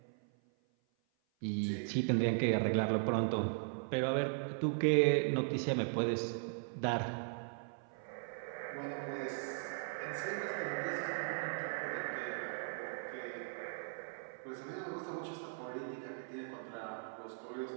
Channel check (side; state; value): left; silent; 52 dB below the other